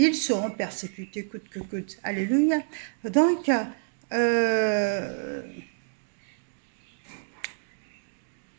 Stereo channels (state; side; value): silent; left; digital silence